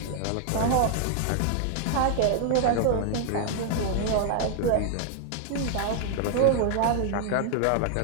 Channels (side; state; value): both; different; correlation 0.00